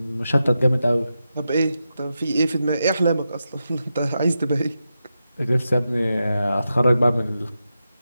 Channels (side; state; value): both; inverted; correlation -0.89